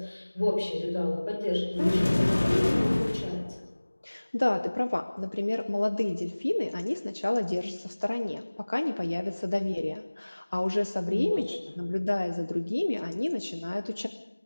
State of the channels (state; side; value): inverted; both; correlation -1.00